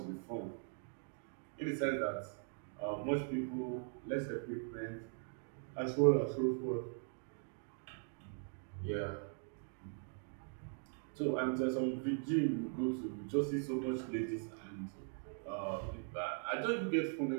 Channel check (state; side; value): silent; left; 51 dB below the other